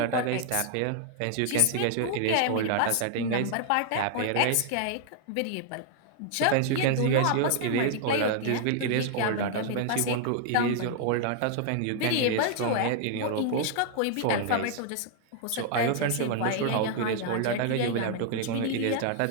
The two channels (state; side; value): different; both; correlation 0.00